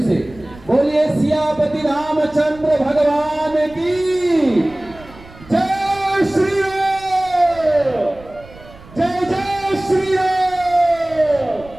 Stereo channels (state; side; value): noise; right; rumble, 21 dB below the sound